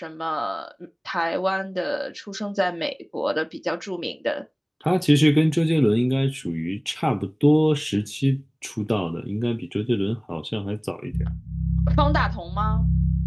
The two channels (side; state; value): both; identical; correlation 1.00